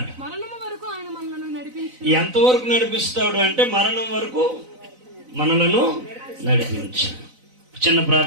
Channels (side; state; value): left; late; 4.0 ms